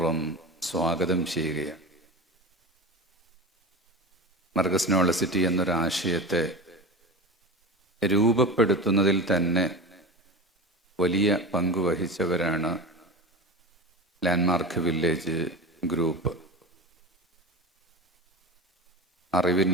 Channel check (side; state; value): both; normal; correlation 0.28